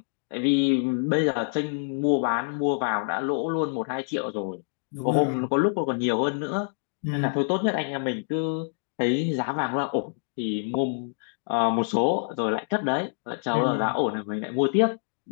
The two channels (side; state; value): right; silent; digital silence